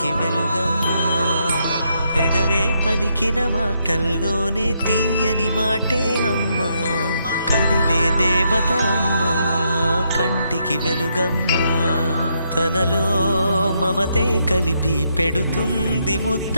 వెలుగమ్మా. పెదవే పలికిన మాటల్లోనే తీయని మాటే అమ్మా, కదిలే దేవత అమ్మా, కంటికి వెలుగమ్మా. తనలో మమతే కలిపి పెడుతుంది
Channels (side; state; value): both; inverted; correlation -0.77